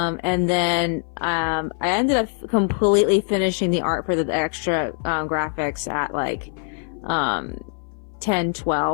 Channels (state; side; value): silent; right; 59 dB below the other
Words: then I ended up completely finishing the art for the extra graphics at like